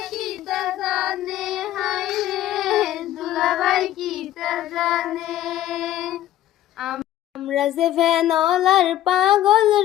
কি তা জানে হায় রে দুলাভাই কি তা জানে আমরা যে ভ্যানলার পাগল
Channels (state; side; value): quieter; right; 13.2 dB